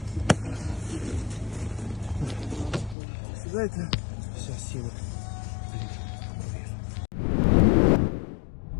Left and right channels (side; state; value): right; drops out; at 3.0 s